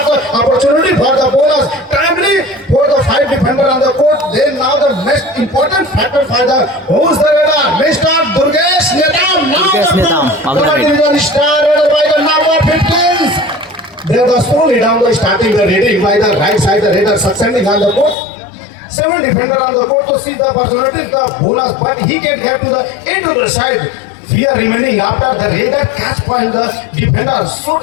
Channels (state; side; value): drops out; right; at 18.2 s